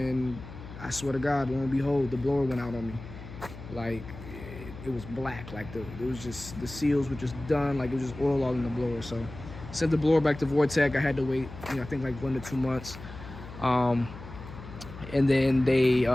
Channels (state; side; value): noise; left; hum, 13 dB below the sound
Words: I swear to God, lo and behold, the blower went out on me. Like it was black. Like it was just, the seals were just done. Like it was just oil all in the blower. So sent the blower back to Vortech. I had to wait, you know, I think like 1 to 2 months. And then they